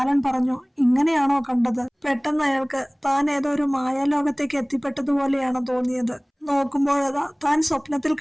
പറഞ്ഞു, ഇങ്ങനെയാണോ കണ്ടത്? പെട്ടെന്ന് അയാൾക്ക് താൻ ഏതോ ഒരു മായാലോകത്തേക്ക് എത്തിപ്പെട്ടതുപോലെയാണ് തോന്നിയത്. നോക്കുമ്പോഴതാ താൻ സ്വപ്നത്തിൽ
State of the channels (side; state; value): both; identical; correlation 1.00